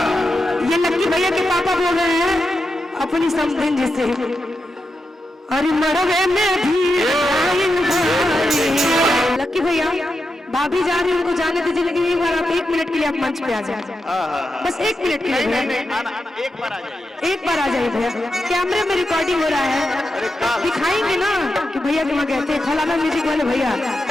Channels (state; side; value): normal; both; correlation 0.88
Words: ये लकी भैया के पापा बोल रहे हैं अपनी समधिन जी से, अरे मरवे में भी लकी भैया भाभी जा रही है, उनको जाने दीजिए, लेकिन एक बार आप 1 मिनट के लिए आप मंच पे आ जाए, बस 1 मिनट के लिए। एक बार आ जाइए, एक बार आ जाइए भैया, कैमरे में रिकॉर्डिंग हो रहा है, दिखाएंगे ना कि भैया के वहाँ गए थे फलाना म्यूजिक वाले भैया।